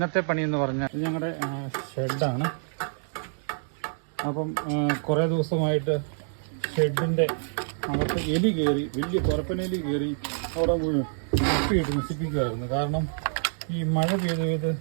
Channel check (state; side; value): silent; left; digital silence